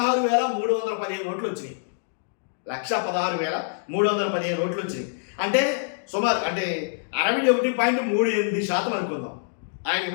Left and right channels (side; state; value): right; silent; digital silence